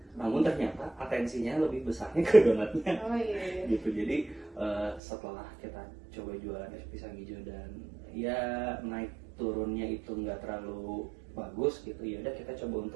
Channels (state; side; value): drops out; left; at 5.0 s